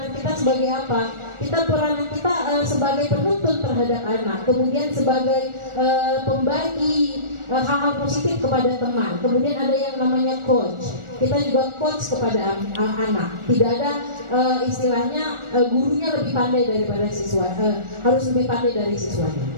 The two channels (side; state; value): left; late; 1.4 ms